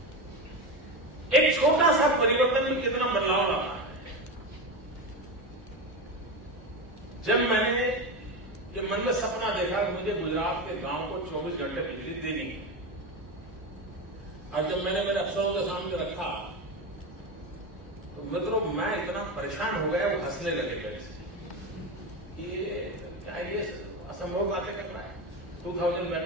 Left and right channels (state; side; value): normal; both; correlation 0.18